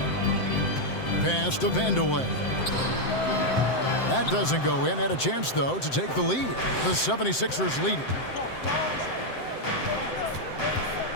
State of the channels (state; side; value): late; right; 7.7 ms